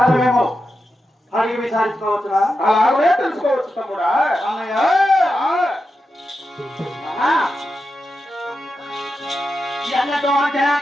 అడిగి విచారించుకోవచ్చురా? అలాగే తెలుసుకోవచ్చు తమ్ముడా. అన్నయ్య ఎన్నడో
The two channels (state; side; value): normal; both; correlation 0.89